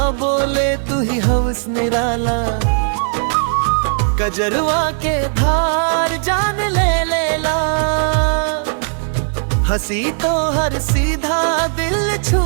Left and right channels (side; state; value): left; silent; digital silence